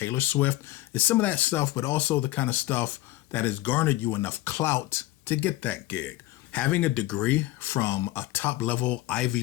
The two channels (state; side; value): quieter; right; 16.4 dB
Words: Swift. It's some of that stuff, but also the kind of stuff that has garnered you enough clout to get that gig. Having a degree from a top level